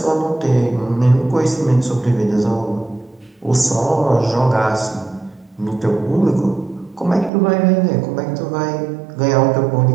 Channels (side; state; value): left; drops out; at 7.3 s